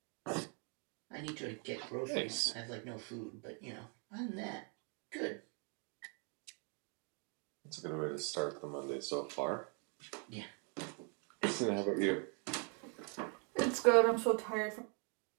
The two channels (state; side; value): quieter; left; 38.7 dB